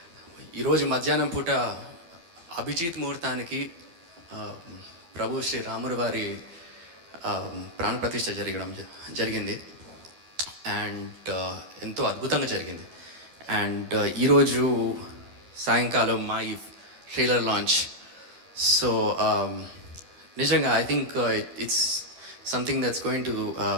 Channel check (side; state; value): left; late; 12 ms